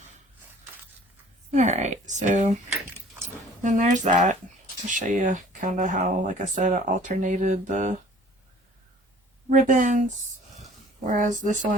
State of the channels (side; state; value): both; normal; correlation 0.51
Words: Alright, so then there's that. I'll show you kind of how, like I said, I alternated the ribbons. Whereas this